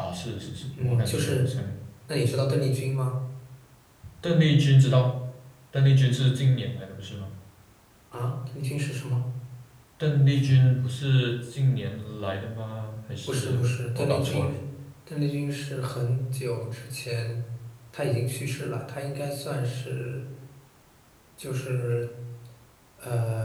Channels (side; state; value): both; identical; correlation 1.00